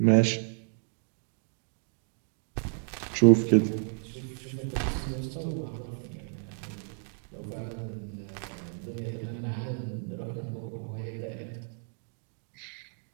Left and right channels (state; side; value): silent; left; 57 dB below the other